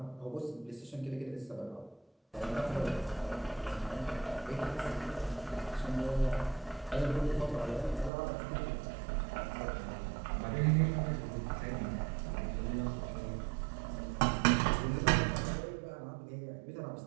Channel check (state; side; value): drops out; left; at 8.1 s